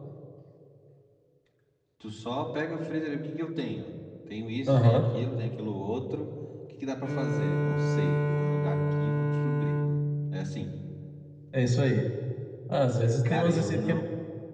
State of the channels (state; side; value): identical; both; correlation 1.00